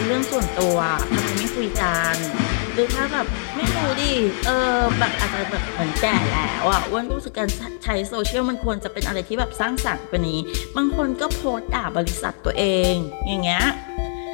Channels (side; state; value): right; silent; digital silence